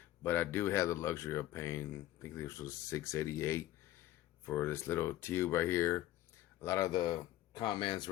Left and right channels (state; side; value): quieter; right; 14.6 dB